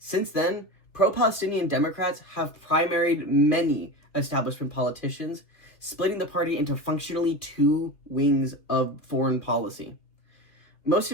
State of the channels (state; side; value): late; right; 2.6 ms